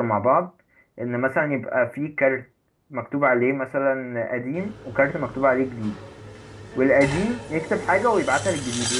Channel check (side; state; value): both; identical; correlation 1.00